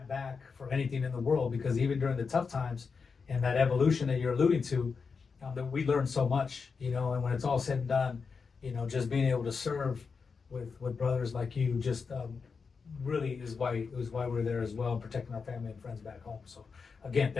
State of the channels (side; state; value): right; quieter; 5.2 dB